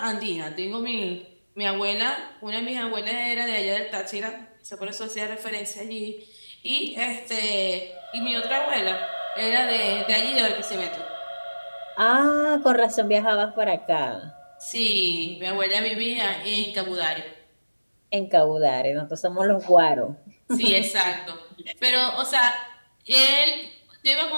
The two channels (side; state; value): both; inverted; correlation -1.00